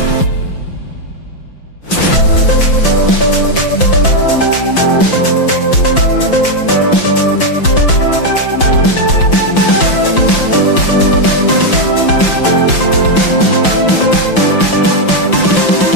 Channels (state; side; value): late; right; 5.9 ms